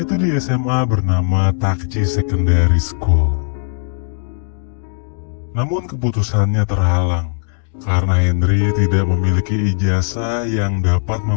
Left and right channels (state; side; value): silent; right; 68 dB below the other